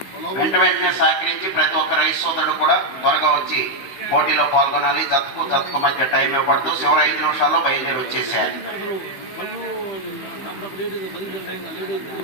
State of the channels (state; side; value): late; right; 15 ms